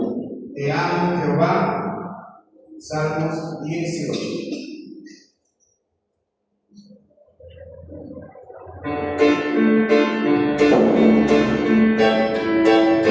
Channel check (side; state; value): both; identical; correlation 1.00